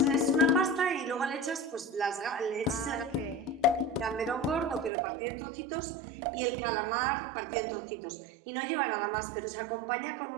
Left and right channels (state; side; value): drops out; left; at 4.9 s